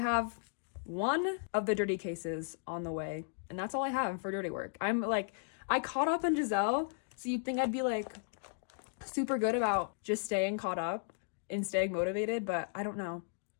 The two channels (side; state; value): right; silent; digital silence